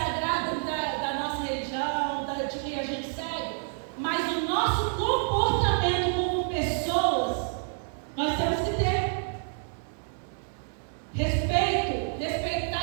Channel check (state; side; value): silent; left; 59 dB below the other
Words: da nossa religião, de quem a gente segue, mas o nosso comportamento como pessoas, nós temos que ter respeito,